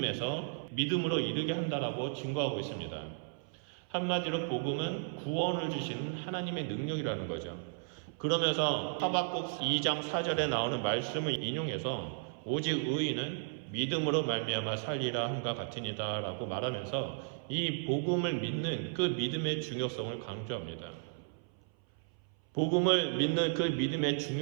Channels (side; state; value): left; silent; 55 dB below the other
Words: 믿음으로 이르게 한다라고 증거하고 있습니다. 한마디로 복음은 구원을 주시는 하나님의 능력이라는 거죠. 그러면서 하박국 2장 4절에 나오는 말씀을 인용해서 오직 의인은 믿음으로 말미암아 살리라 함과 같으니라 라고 말하면서 이 복음을 믿는 그 믿음의 중요성을 강조합니다. 복음을 믿는 그 믿음의